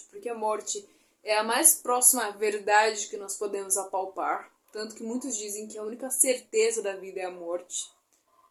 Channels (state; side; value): identical; both; correlation 1.00